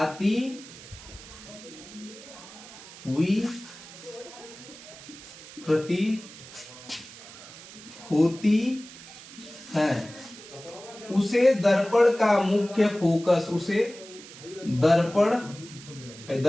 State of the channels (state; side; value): noise; right; hiss, 17 dB below the sound